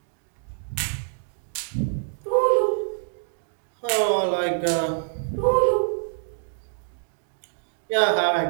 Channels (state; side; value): silent; left; digital silence